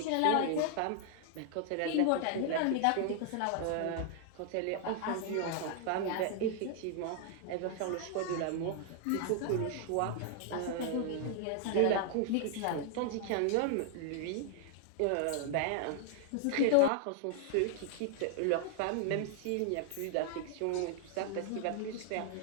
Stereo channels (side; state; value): both; different; correlation 0.00